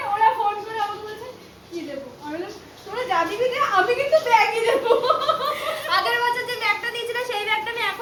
ওরা ফোন করে আমাকে বলছে কি দেবো, আমি বললাম তোরা যা দিবি দে, আমি কিন্তু ব্যাগই দেবো। আগের বছর যে ব্যাগটা দিয়েছিল সেই ব্যাগটা আমি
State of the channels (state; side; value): identical; both; correlation 1.00